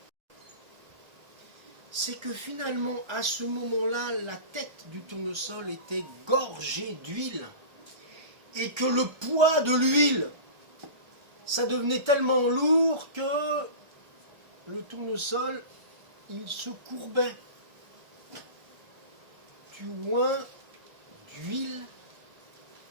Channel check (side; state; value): left; late; 1.3 ms